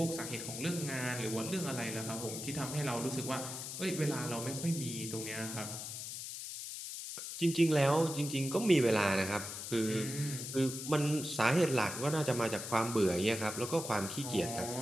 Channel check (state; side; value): noise; left; hiss, 7 dB below the sound